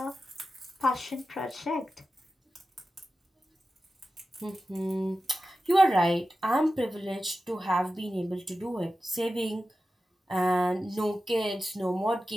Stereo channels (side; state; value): both; normal; correlation 0.93